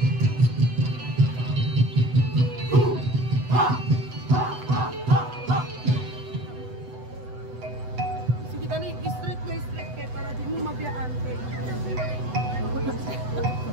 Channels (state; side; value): late; left; 8.0 ms